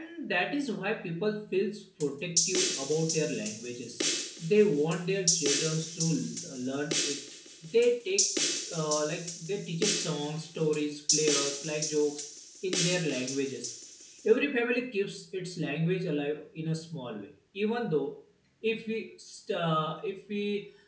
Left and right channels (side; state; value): both; identical; correlation 1.00